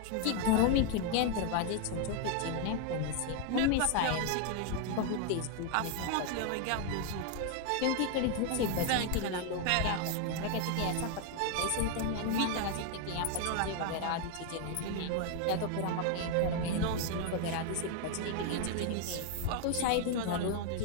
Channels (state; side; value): different; both; correlation 0.00